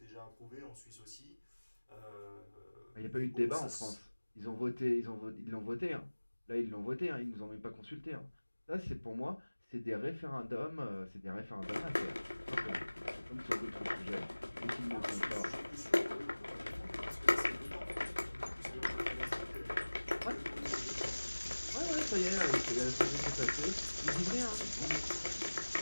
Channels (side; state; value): both; inverted; correlation -1.00